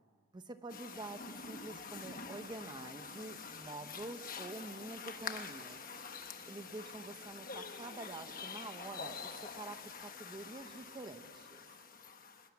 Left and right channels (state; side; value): normal; both; correlation 0.21